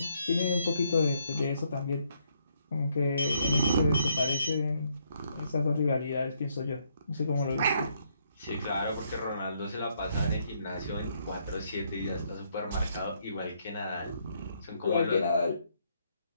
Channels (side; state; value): both; inverted; correlation -0.72